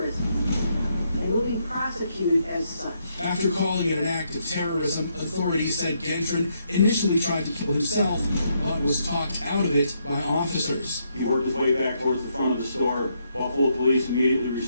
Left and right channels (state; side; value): inverted; both; correlation -0.76